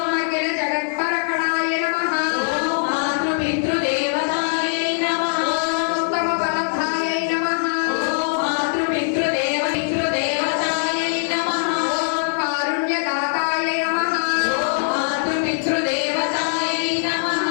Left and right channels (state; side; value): silent; right; 65 dB below the other